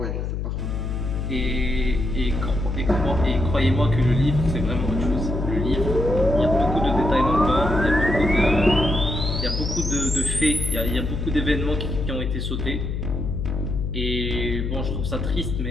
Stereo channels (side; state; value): left; noise; hum, 2 dB below the sound